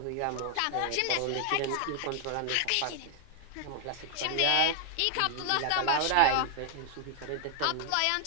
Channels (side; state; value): both; different; correlation 0.00